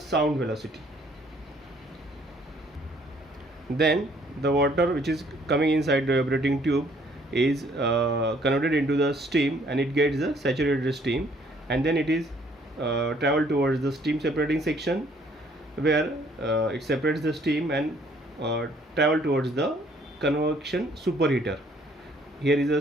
velocity. Then the water which is coming inside the evaporating tube is converted into the steam, and it gets the saturated steam, and then it is travel towards the steam separating section, where it separates the steam and travel towards the convection superheater. Here is a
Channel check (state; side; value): normal; both; correlation 0.62